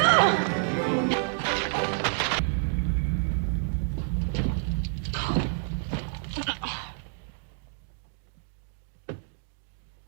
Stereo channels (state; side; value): silent; left; digital silence